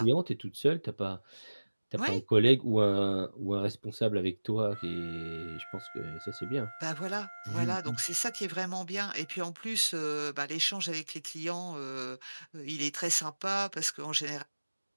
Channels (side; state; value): both; inverted; correlation -1.00